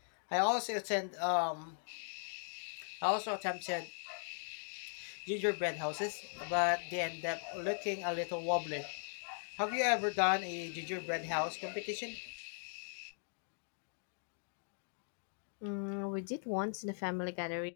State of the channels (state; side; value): silent; right; digital silence